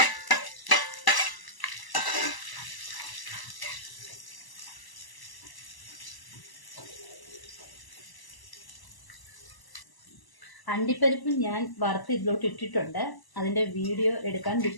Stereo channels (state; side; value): late; right; 1.0 ms